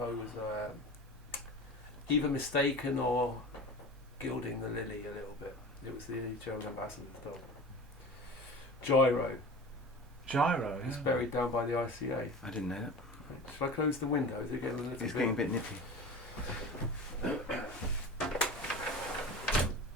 was either mistaken or gilding the lily a little bit. It was the German ambassador's dog. Gyro. Gyro. He's Yeah. buried down by the ICA. I didn't know that. Should I close the window? Is it getting a little It's bit? getting a bit nippy.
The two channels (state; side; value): normal; both; correlation 0.34